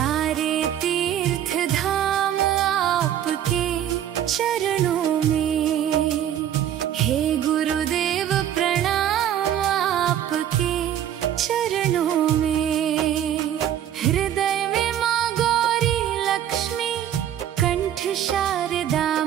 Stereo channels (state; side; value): quieter; left; 10.6 dB